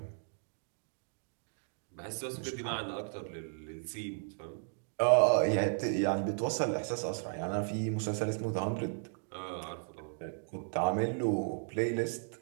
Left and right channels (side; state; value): left; silent; digital silence